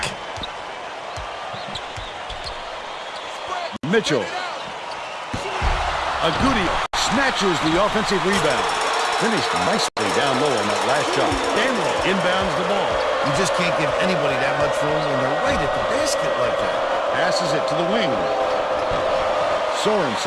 Mitchell. Agudio snatches the offensive rebound. Finished nicely down low on that last shot. Daniel inbounds the ball. You just can't give anybody that much room when they're right at the basket like that. Passes it to the wing.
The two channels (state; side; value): identical; both; correlation 1.00